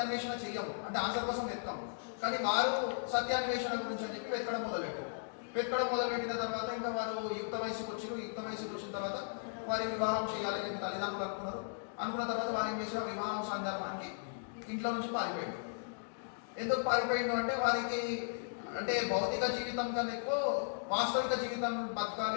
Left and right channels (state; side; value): silent; right; digital silence